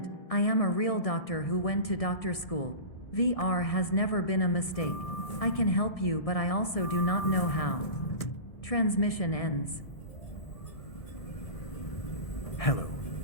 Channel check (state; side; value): late; right; 1.7 ms